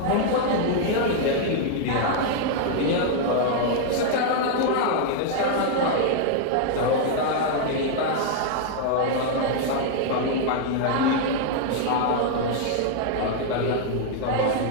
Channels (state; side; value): different; both; correlation 0.00